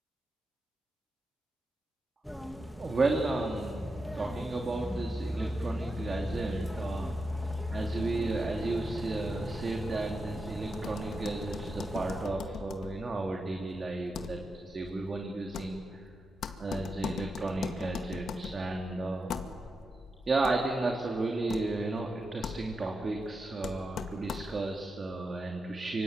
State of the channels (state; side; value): normal; both; correlation 0.87